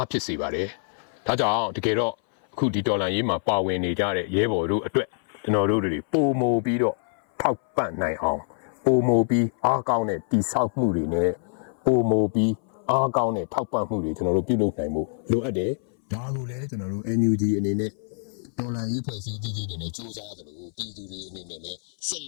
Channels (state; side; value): silent; right; 59 dB below the other